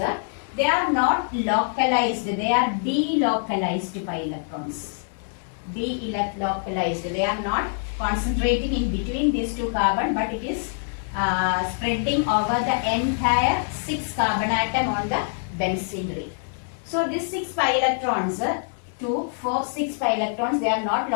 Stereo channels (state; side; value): silent; right; digital silence